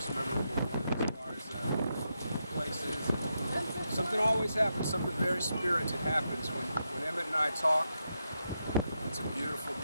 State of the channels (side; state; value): both; inverted; correlation -0.85